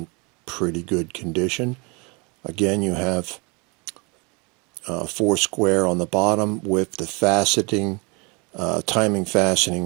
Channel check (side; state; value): left; quieter; 30.2 dB